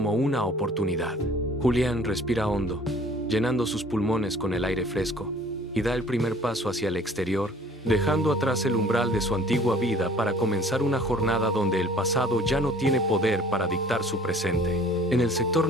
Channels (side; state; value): both; normal; correlation 0.52